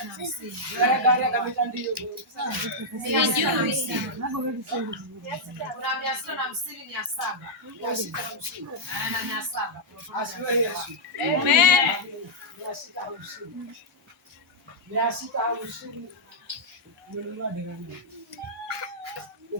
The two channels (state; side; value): normal; both; correlation -0.06